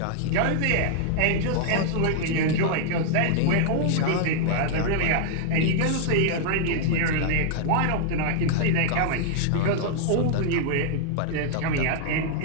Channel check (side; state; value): both; different; correlation 0.00